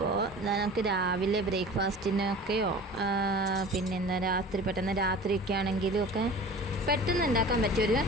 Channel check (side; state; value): both; normal; correlation 0.39